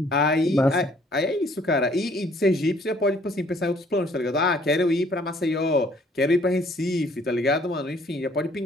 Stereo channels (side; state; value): both; normal; correlation 0.60